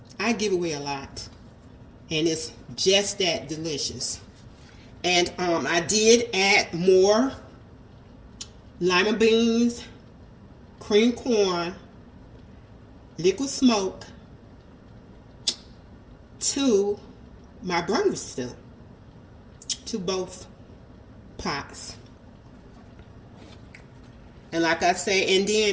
I give away a lot. And it's just that delicious. And I did add more lima beans, cream corn, liquid smoke to my Brunswick stew, to both pots. And like I say, and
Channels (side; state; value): both; identical; correlation 1.00